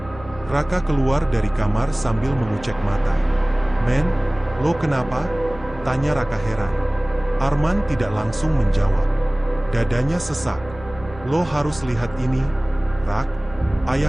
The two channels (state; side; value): noise; right; hum, 18 dB below the sound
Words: Raka keluar dari kamar sambil mengucek mata. "Men, lo kenapa?" tanya Raka heran. Arman tidak langsung menjawab. Dadanya sesak. "Lo harus lihat ini, Rak.